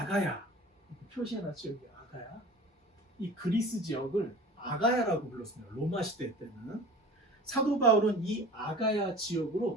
표시해놨죠 여기 아가야. 이 그리스 지역을 아가야라고 불렀습니다. 로마 시대 때는. 사도 바울은 이 아가야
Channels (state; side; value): normal; both; correlation 0.40